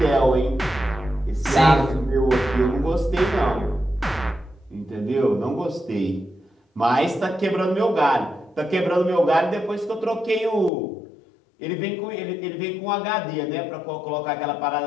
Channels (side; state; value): right; drops out; at 10.7 s